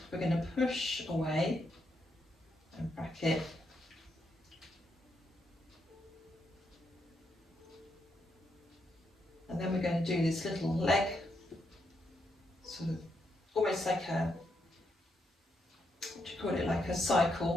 We're going to push away and bracket. And then we're going to do this little leg, sort of almost like a, what do you call it, like a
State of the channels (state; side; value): normal; both; correlation 0.80